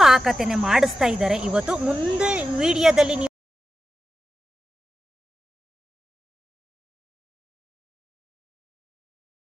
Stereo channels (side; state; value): both; normal; correlation 0.92